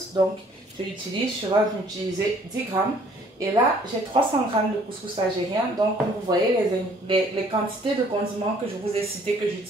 donc je vais utiliser 10 grammes. Et là, j'ai 300 grammes de couscous algérien. Donc, comme vous voyez, les quantités de condiments que je vous ai citées que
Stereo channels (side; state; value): both; normal; correlation 0.59